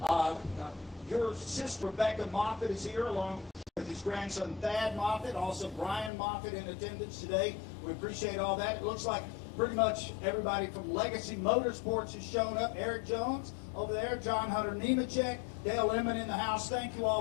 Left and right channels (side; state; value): right; drops out; at 6.1 s